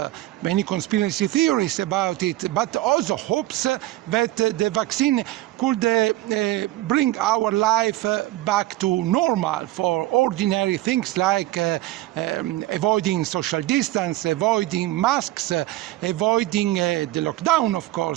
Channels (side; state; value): left; quieter; 16.4 dB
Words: many conspiracy theories about it, but also hopes that the vaccine could bring our life back to normal for ordinary things like avoiding social distance, avoiding masks, avoiding the lockdown, of